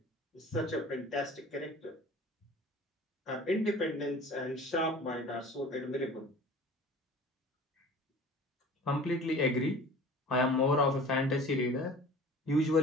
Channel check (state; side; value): normal; both; correlation 0.43